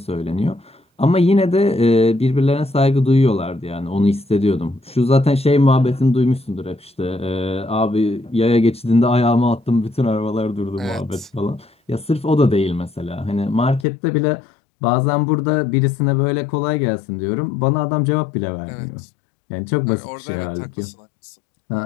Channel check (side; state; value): right; drops out; at 13.9 s